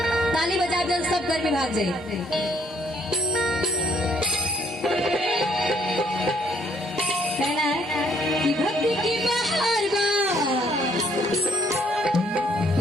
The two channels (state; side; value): normal; both; correlation 0.66